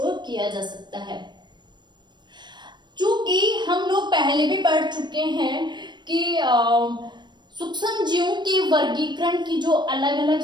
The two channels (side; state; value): left; late; 0.22 ms